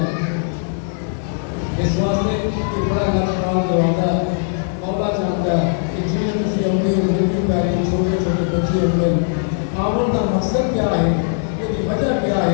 اس واسطے کہ بڑا لفظان جو آتا ہے مولا چاہتا ہے کہ جنہیں کسی اپنی زندگی پیاری چھوٹے چھوٹے بچے ہوئے آمن کا مقصد کیا ہے یہ وجہ کیا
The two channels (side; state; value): right; silent; 66 dB below the other